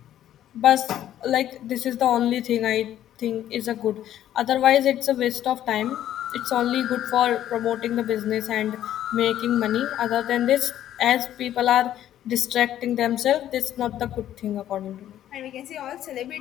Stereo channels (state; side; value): quieter; right; 11.8 dB